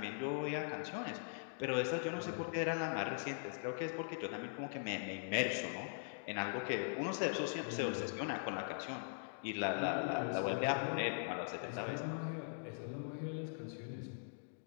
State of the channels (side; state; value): right; silent; digital silence